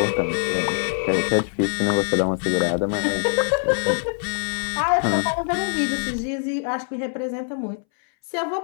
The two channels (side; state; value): right; silent; 63 dB below the other